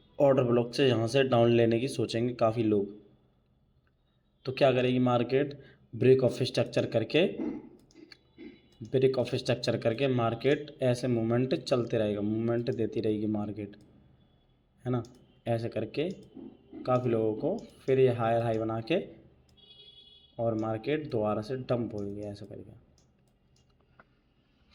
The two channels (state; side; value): identical; both; correlation 1.00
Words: ब्लॉक से यहाँ से डाउन लेने की सोचेंगे काफ़ी लोग। तो क्या करेगी मार्केट, ब्रेक ऑफ स्ट्रक्चर करके मार्केट ऐसे मूवमेंट चलते रहेगा, मूवमेंट देती रहेगी मार्केट, है ना, ऐसे करके काफ़ी लोगों को फिर ये हायर हाई बना के और मार्केट दोबारा से डंप होगी ऐसे करके।